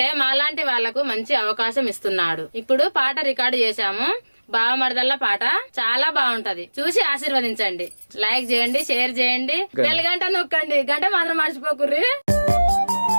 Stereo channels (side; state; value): both; inverted; correlation -1.00